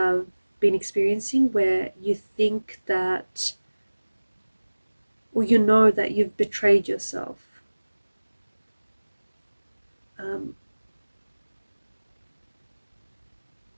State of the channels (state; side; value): inverted; both; correlation -1.00